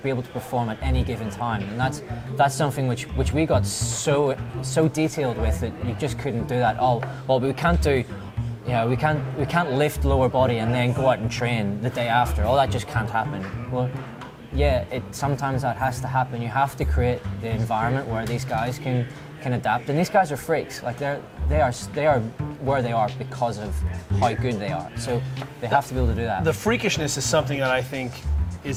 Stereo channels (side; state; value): both; identical; correlation 1.00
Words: be able to perform at any given time, and that's something which we got so detailed with that you just couldn't do that. We can't do. We can't lift lower body and then go out and train the day after. That just can't happen. Well, yeah, sometimes that has to happen. You have to create the environment where these guys can adapt. And these guys are freaks. Like they are where they are because of how good they are. So they have to be able to do that. The freakishness is something that I think